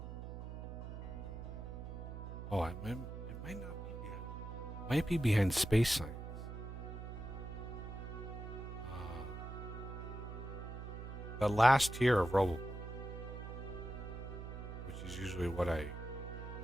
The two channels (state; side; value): noise; right; hum, 8 dB below the sound